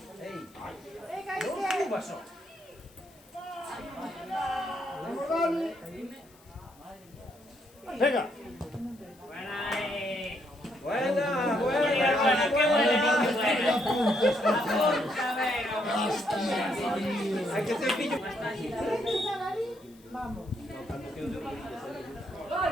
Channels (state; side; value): noise; left; hiss, 28 dB below the sound